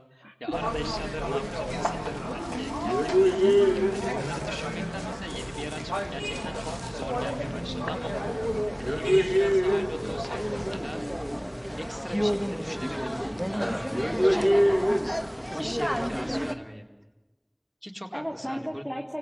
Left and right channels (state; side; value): identical; both; correlation 1.00